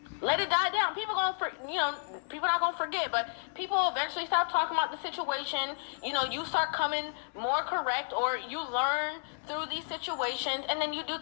Let it die down. People not gonna forget, but people eventually stop talking about the situation. You start coming more correct, or you learn through these situations, and then you do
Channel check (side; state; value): right; silent; digital silence